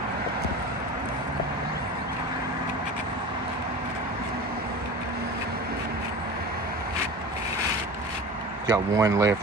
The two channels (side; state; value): both; normal; correlation 0.34